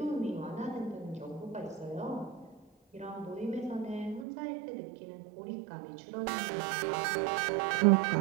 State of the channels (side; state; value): left; drops out; at 4.2 s